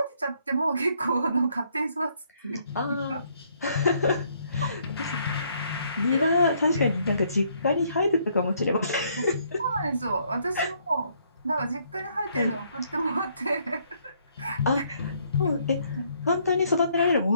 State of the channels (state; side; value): inverted; both; correlation -0.68